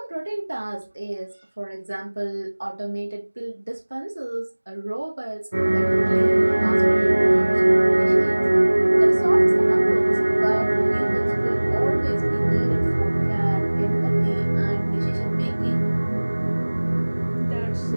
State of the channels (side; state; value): both; inverted; correlation -1.00